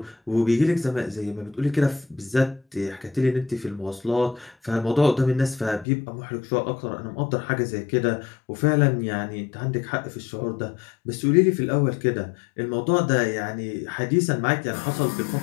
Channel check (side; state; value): right; drops out; at 5.9 s